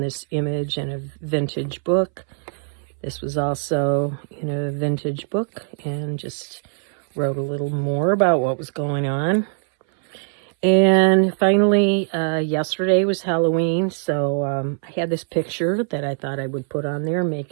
this image in a vintage book. This was also in a vintage book, and just wrote a little more about what was going on. And finally, yesterday was Halloween, so I had this picture that I thought I would put on there,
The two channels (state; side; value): silent; left; 61 dB below the other